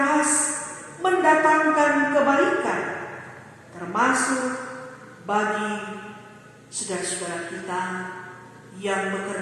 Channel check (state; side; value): identical; both; correlation 1.00